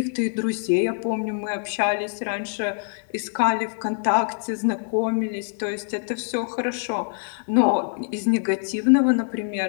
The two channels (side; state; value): right; silent; 62 dB below the other